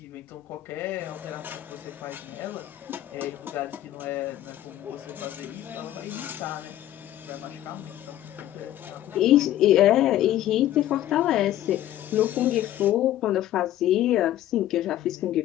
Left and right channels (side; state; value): right; quieter; 13.2 dB